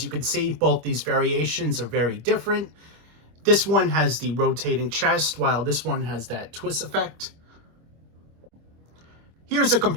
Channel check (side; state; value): left; late; 25 ms